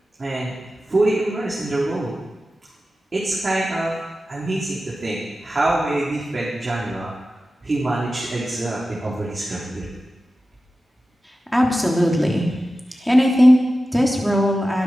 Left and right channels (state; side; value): normal; both; correlation 0.94